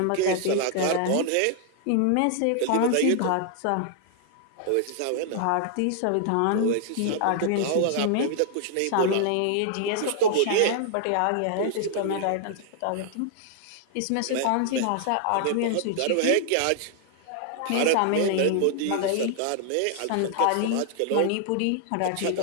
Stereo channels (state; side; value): different; both; correlation -0.01